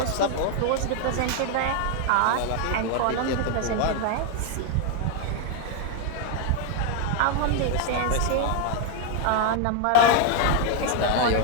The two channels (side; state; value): both; different; correlation 0.00